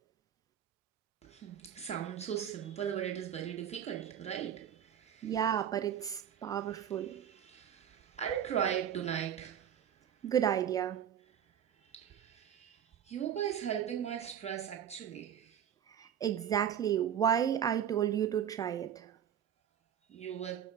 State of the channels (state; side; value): quieter; left; 9.3 dB